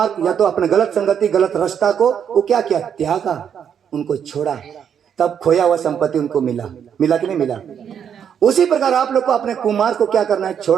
या तो अपने गलत संगति, गलत रास्ता को वो क्या किया? त्यागा, उनको छोड़ा, तब खोया हुआ संपत्ति उनको मिला। मिला कि नहीं मिला? उसी प्रकार आप लोग को अपने कुमार को क्या करना है?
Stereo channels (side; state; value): left; quieter; 8.2 dB